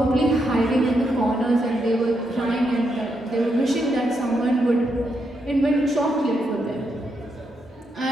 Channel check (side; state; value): both; normal; correlation 0.81